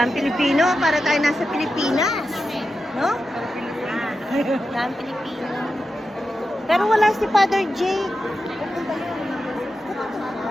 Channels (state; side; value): normal; both; correlation 0.90